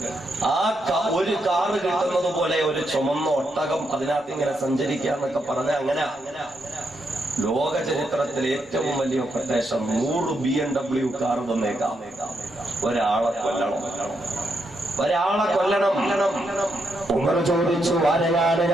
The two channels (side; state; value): both; normal; correlation 0.80